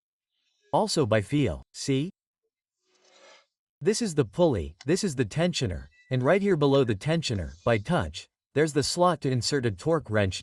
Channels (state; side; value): identical; both; correlation 1.00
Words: Also by feel, see? This is the pulley, this is the tensioner, and right here below the tensioner, by touch, there's the slot to insert a torque wrench